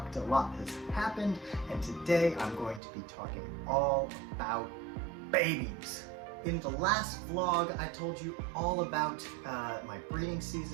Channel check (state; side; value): drops out; left; at 2.8 s